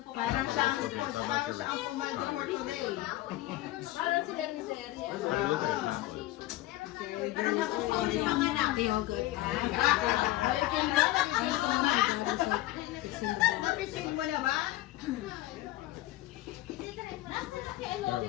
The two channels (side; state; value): right; quieter; 16.6 dB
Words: Parang siya ang pumaldo for today. Parang sila ni Seria. Napising mo na ba?